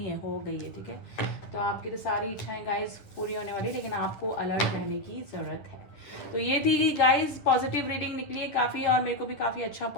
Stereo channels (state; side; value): late; right; 10 ms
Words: है, हो गई है, ठीक है। तो आपकी तो सारी इच्छाएं गाइस पूरी होने वाली, लेकिन आपको अलर्ट रहने की ज़रूरत है। तो ये थी गाइस पॉजिटिव रीडिंग निकली है काफ़ी, और मेरे को भी काफ़ी अच्छा